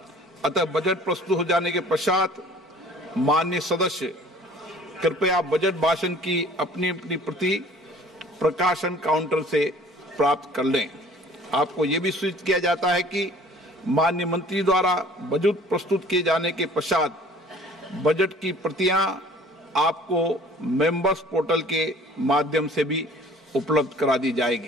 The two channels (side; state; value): both; normal; correlation 0.51